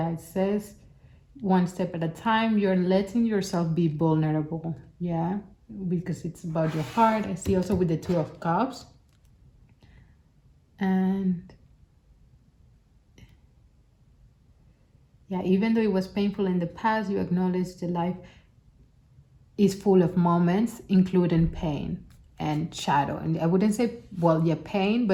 it says one step at a time, you're letting yourself be vulnerable. Yeah, because it's about your heart. I see also with the Two of Cups. And yeah, even though it was painful in the past, you acknowledge the life is full of moments, including pain and shadow. And I wouldn't say, well, yeah, pain,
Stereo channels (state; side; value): identical; both; correlation 1.00